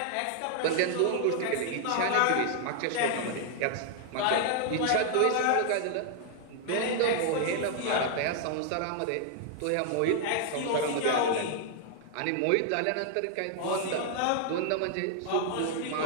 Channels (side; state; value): both; different; correlation 0.00